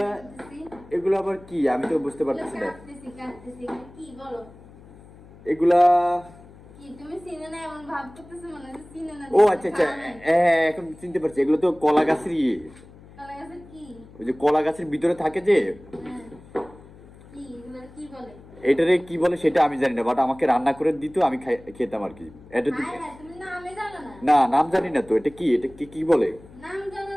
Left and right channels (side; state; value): left; noise; hum, 22 dB below the sound